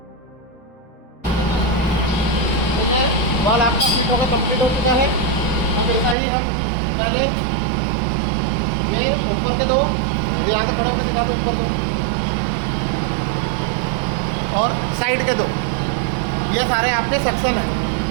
बॉल आपका फिट होकर कंप्लीट हो चुका है। अब ऐसा ही हम पहले ये ऊपर के दो, यहाँ से खड़ा सीधा पे ऊपर दो और साइड के दो, ये सारे आपके सेक्शन हैं।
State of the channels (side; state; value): left; drops out; at 6.2 s